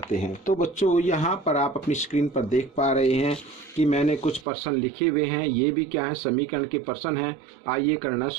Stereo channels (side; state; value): left; drops out; at 4.5 s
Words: हैं। तो बच्चों यहाँ पर आप अपनी स्क्रीन पर देख पा रहे हैं कि मैंने कुछ प्रश्न लिखे हुए हैं। ये भी क्या है, समीकरण के प्रश्न हैं। आइए करना